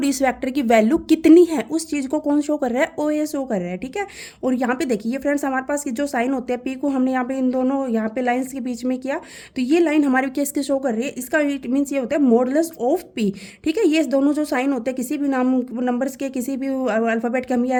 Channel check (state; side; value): identical; both; correlation 1.00